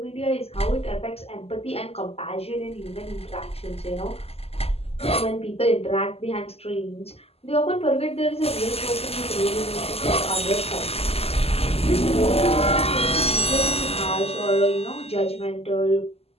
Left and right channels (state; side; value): late; right; 0.29 ms